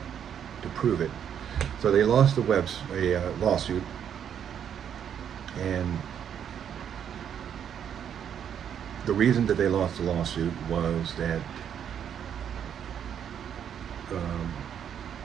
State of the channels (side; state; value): left; quieter; 8.7 dB